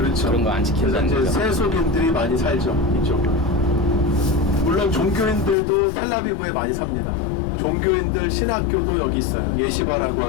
그런 거 안 지킨다는 그래서 이제 거죠. 세속인들이 많이 살죠, 이쪽은. 물론 종교인들도 텔라비브에 많이 삽니다. 종교인들 신학교도 여기 있어요. 예시바라고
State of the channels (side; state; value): right; drops out; at 5.6 s